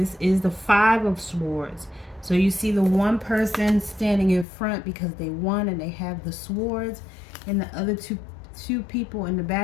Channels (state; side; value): drops out; right; at 4.5 s